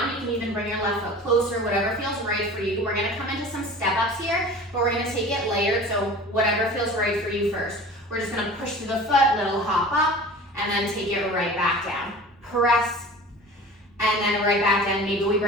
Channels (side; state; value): both; normal; correlation 0.40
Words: You can even bring your left foot closer, whatever feels right for you. We're gonna come into some step-ups here, but we're gonna take it layered, so whatever feels right for you first. We're just gonna push through the foot, little hop up, and then take it right back down. Press, and then right back down. Maybe we